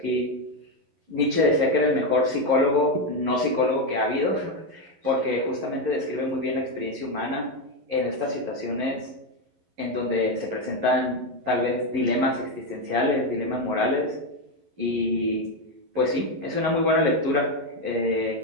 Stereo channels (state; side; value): late; left; 11 ms